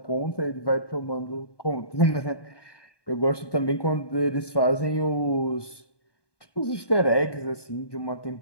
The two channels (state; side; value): late; right; 1.2 ms